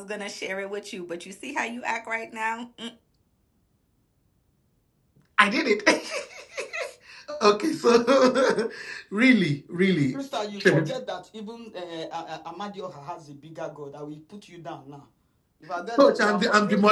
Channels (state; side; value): identical; both; correlation 1.00